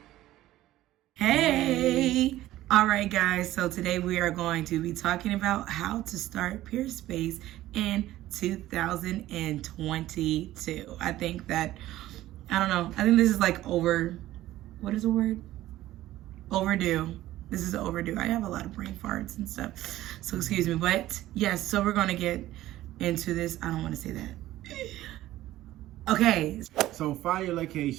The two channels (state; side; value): quieter; left; 15.0 dB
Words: Hey! Alright guys, so today we are going to be talking about how to start Peerspace in 2022. I think this is like what is the word? Overdue. This is overdue. I have a lot of brain farts and stuff, so excuse me. But yes, so we're going to get into this. I don't want to say that. Okay. So find your